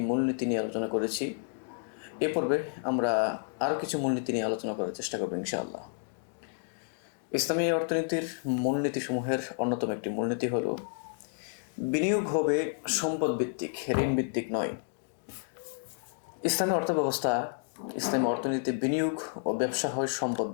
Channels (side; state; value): right; silent; digital silence